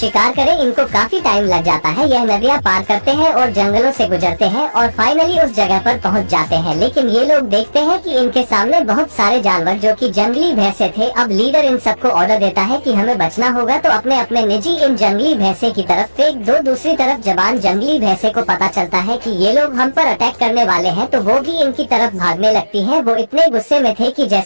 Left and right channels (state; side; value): inverted; both; correlation -1.00